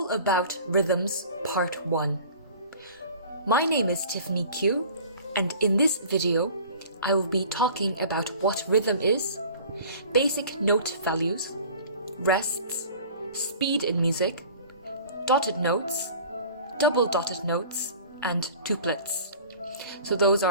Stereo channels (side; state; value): both; inverted; correlation -0.44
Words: About Rhythms Part 1. My name is Tiffany Q, and in this video I will be talking about what rhythm is, basic note values, rests, speed in music, dotted notes, double dotted notes, and tuplets. So those